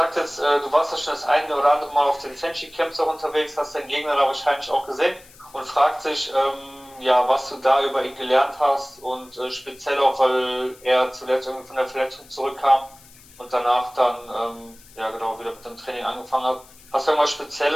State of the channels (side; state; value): left; noise; hiss, 24 dB below the sound